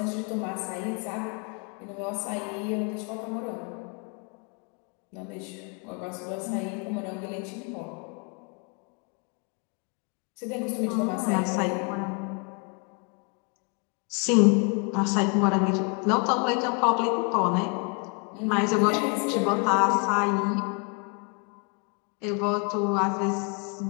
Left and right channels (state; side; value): quieter; right; 34.9 dB